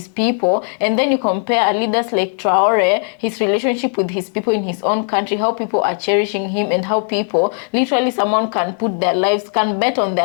people, and then you compare leaders like Traore, his relationship with his people in his own country, how people are cherishing him, and how people, literally someone can put their lives, can bet on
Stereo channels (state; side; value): silent; right; 58 dB below the other